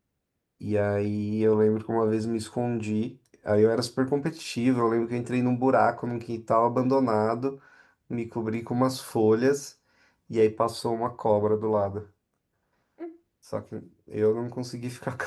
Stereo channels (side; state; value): both; identical; correlation 1.00